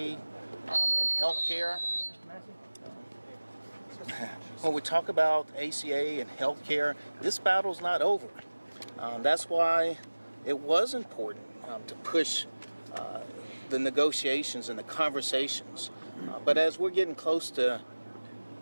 and healthcare, when we talk about ACA and healthcare, this battle's not over. That's why it was important to push the negotiations and the conversations. But as we're getting close to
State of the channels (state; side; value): inverted; both; correlation -1.00